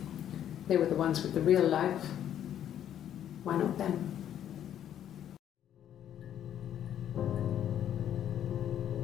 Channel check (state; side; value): quieter; right; 10.4 dB